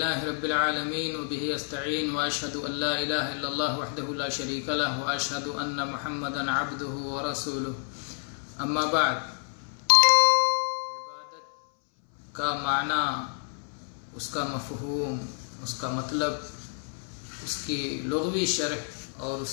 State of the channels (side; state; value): right; silent; 59 dB below the other